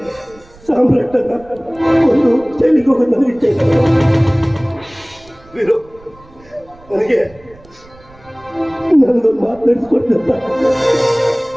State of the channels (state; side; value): noise; right; rumble, 25 dB below the sound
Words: ಸಾಮ್ರಾಟನ ಒಂದು ಜೈಲಿಗೆ ಹೋಗೋದು ನನಗೆ ಇಷ್ಟ ಇಲ್ಲ. ವೀರು, ನನಗೆ ನನಗೊಂದು ಮಾತು ನಡೆಸ್ಕೊಡ್ತಂತ